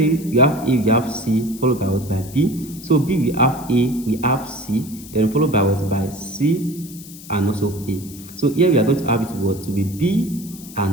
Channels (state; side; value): noise; left; hiss, 17 dB below the sound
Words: we have A, we have C, followed by what? By B. So B we have A, we have C, then followed by what? By C and also A. So here we are going to have it what? To be B